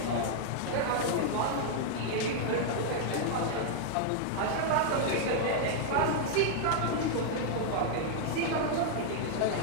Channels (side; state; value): both; different; correlation 0.00